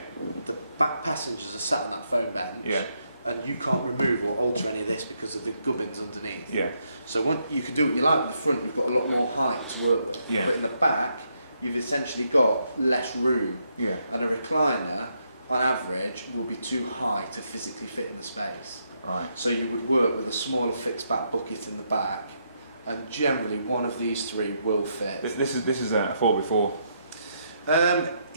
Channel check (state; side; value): inverted; both; correlation -0.77